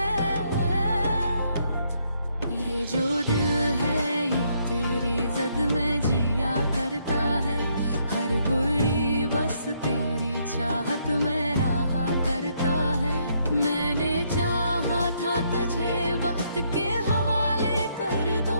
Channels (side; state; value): both; inverted; correlation -0.72